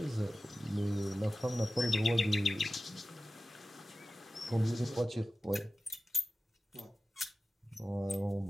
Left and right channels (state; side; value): normal; both; correlation 0.95